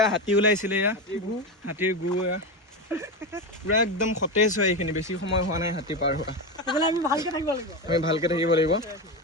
হাতী ওলাইছিলে, এয়া হাতীৰ গু। এয়া পুৰা একদম সতেজ হয়। এইখিনি বেছি সময় হোৱা নাই হাতী পাৰ হোৱা। আমি ভালকে থাকিব লাগিব।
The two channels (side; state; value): both; normal; correlation 0.16